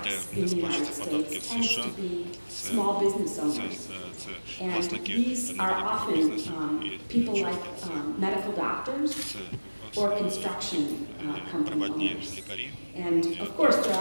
in the United States tends to be small business owners. And these are often people like medical doctors or construction company owners. And of course, there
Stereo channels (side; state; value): both; inverted; correlation -1.00